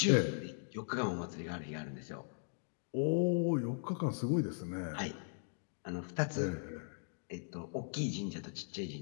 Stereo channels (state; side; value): silent; right; digital silence